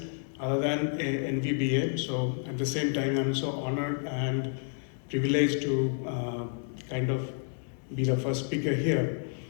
other than NVBA. So at the same time, I'm so honored and privileged to kind of be the first speaker here.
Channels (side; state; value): right; silent; 58 dB below the other